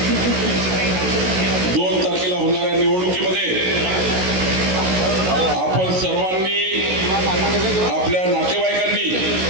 2 तारखेला होणाऱ्या निवडणुकीमध्ये आपण सर्वांनी, आपल्या नातेवाईकांनी,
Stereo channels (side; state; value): left; late; 16 ms